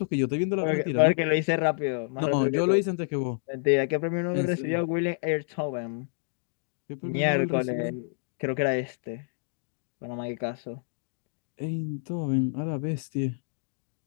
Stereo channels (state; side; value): silent; right; digital silence